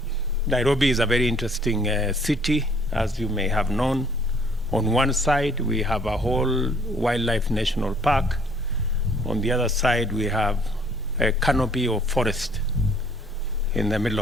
Nairobi is a very interesting city, as you may have known. On one side, we have a whole wildlife national park. On the other side, we have a canopy of forest in the middle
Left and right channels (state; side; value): normal; both; correlation 0.60